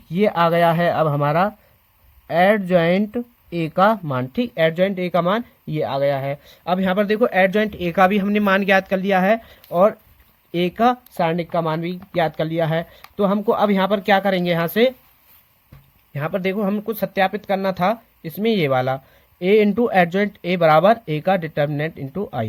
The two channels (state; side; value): identical; both; correlation 1.00